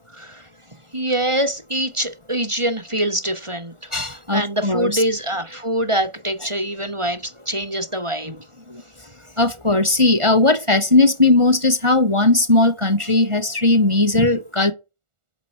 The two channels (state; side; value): late; left; 1.4 ms